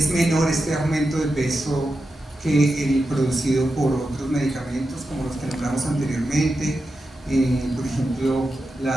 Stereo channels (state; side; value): normal; both; correlation 0.89